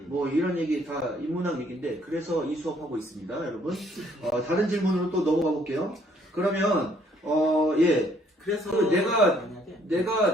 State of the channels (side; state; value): both; normal; correlation 0.65